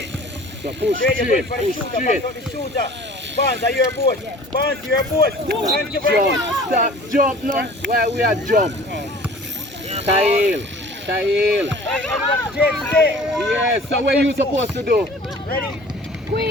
So push straight. Box out the shooter. Barnes, are you your boat? Barnes, you're your boat. Thank you very much. Stop, jump now. Where we are jump. Kyle. Yes, so what are you supposed to do? Ready?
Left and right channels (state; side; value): normal; both; correlation 0.46